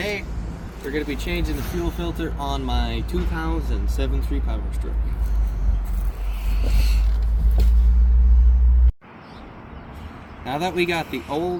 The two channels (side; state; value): both; identical; correlation 1.00